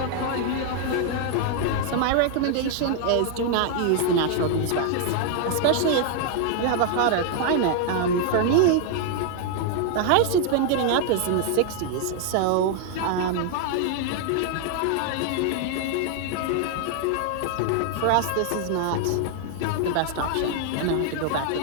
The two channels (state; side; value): different; both; correlation 0.00